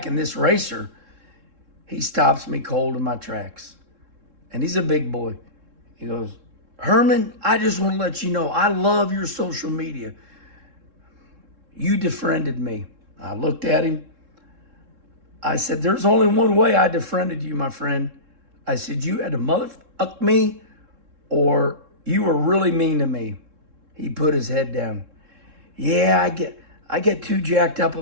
and this racer, he stops me cold in my tracks. And he's a big boy. He goes, Herman, I just want to let you know, I love your social media. You defriended me. I looked at him. I said, there's only one way I defriended you, my friend. I said, you had to motherfuck me or you were really mean to me. He put his head down. Yeah, I get too jacked up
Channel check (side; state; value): left; late; 3.7 ms